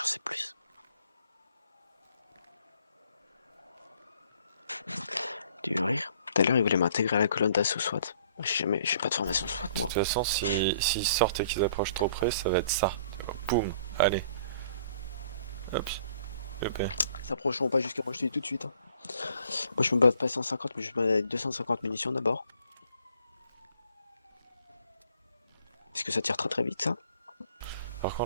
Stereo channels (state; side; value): inverted; both; correlation -0.59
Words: sais plus. Tu veux rire? Tout à l'heure, il voulait m'intégrer à la colonne d'assaut SWAT. J'ai pas de formation SWAT, moi. De toute façon, s'ils sortent et qu'ils approchent trop près, ça va être ça. Boum, allez. Hop. Hop. Ils s'approcheront pas jusqu'à moi, je te dis tout de suite. Hein. Moi, je me bats pas 150, mais je me bats avec 250 munitions d'abord. Est-ce que ça tire très très vite, ça? Par